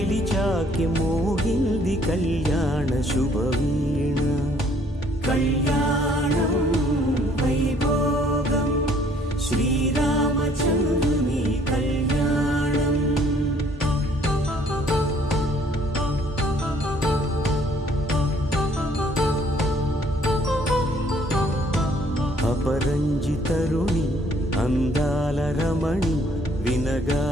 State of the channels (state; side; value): normal; both; correlation 0.61